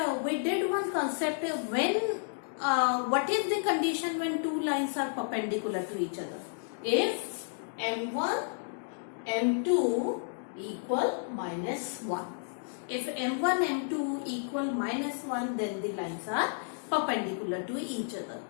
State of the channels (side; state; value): right; silent; digital silence